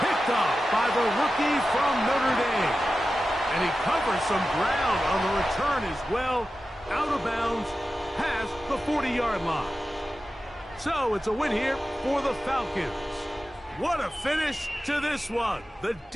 by the rookie from Notre Dame. And he covers some ground on the return as well, out of bounds, past the 40-yard line. So it's a win here for the Falcons. What a finish to this one. The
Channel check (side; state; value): both; normal; correlation 0.93